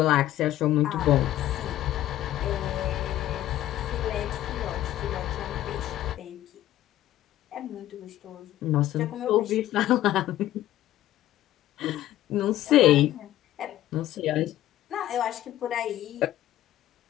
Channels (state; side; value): quieter; right; 13.8 dB